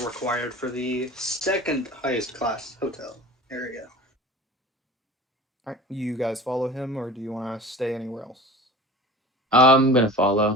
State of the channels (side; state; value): both; normal; correlation 0.39